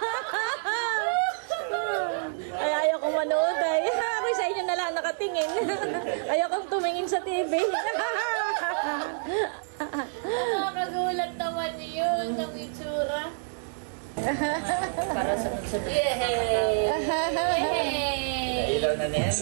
Ay, ayaw kong manood ay. Ako sa inyo na lang nakatingin. Ayaw kong tumingin sa TV. Nakakagulat naman yun ng itsura. Para sa sunod. Yay! Ilaw na ni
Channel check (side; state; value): left; silent; digital silence